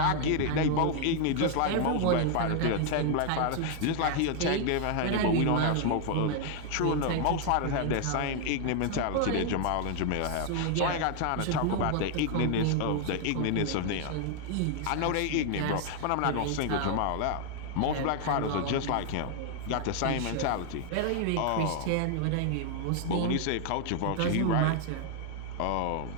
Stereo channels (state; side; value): different; both; correlation 0.00